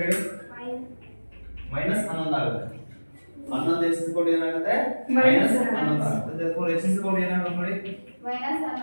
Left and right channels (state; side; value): inverted; both; correlation -1.00